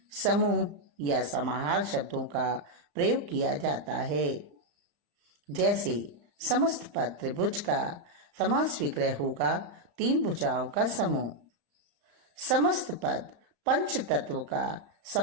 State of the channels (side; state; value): left; late; 34 ms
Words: समूह या समाहार शब्दों का प्रयोग किया जाता है। जैसे समस्त पद त्रिभुज का समास विक्रय होगा 3 भुजाओं का समूह। समस्त पद पंच तत्व का